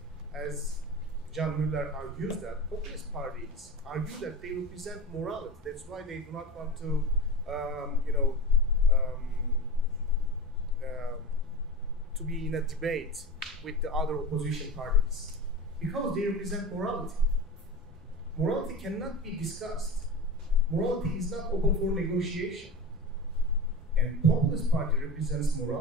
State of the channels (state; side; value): normal; both; correlation 0.29